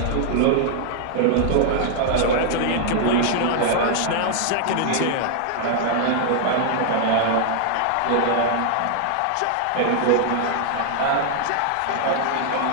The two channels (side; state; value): both; different; correlation 0.00